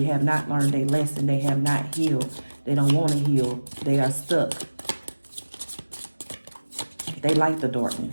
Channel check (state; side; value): inverted; both; correlation -1.00